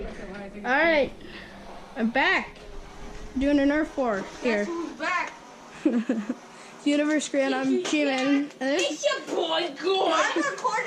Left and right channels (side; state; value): both; identical; correlation 1.00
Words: I'm back. Doing a Nerf War here. Who's back? Universe Grand, I'm G-Man. It's your boy, good. I'm